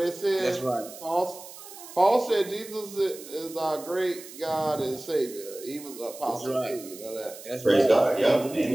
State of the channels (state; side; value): noise; right; hiss, 16 dB below the sound